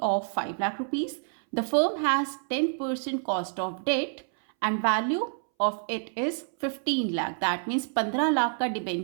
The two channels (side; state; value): left; silent; 59 dB below the other